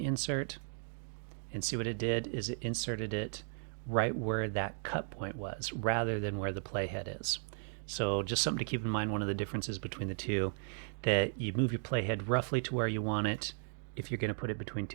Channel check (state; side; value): silent; left; 54 dB below the other